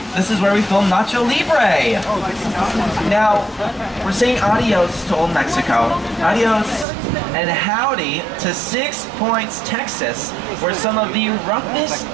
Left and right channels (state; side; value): drops out; left; at 6.9 s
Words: this is where we film Nacho Libre. Now, we're saying adios to Old Mexico, adios and howdy to 6 Points, Texas, where some of the roughest,